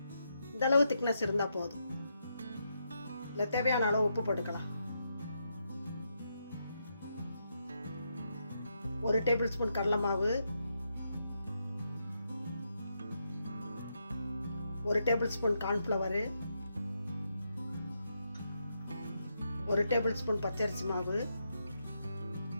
இந்தளவு திக்னஸ் இருந்தால் போதும். இல்லை தேவையான அளவு உப்பு போட்டுக்கலாம். 1 டேபிள் ஸ்பூன் கடலை மாவு, 1 table spoon cornflour, 1 table spoon பச்சரிசி மாவு,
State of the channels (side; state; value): both; inverted; correlation -0.82